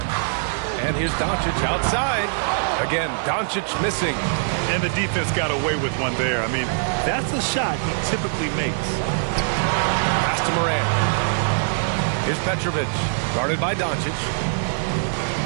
And here's Doncic outside. Again, Doncic missing. And the defense got away with one there. I mean, that's a shot he typically makes. Pass to Morant. Here's Petrovic, guarded by Doncic.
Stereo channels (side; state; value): left; silent; 64 dB below the other